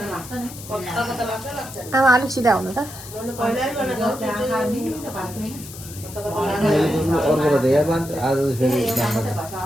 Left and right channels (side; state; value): left; noise; hiss, 14 dB below the sound